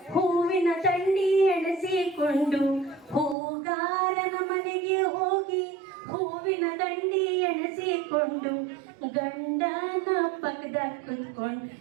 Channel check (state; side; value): drops out; left; at 3.4 s